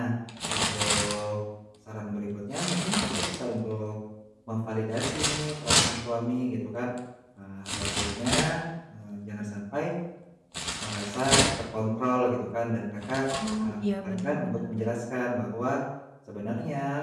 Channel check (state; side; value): identical; both; correlation 1.00